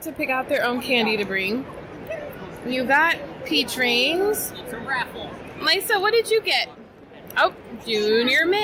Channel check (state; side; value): identical; both; correlation 1.00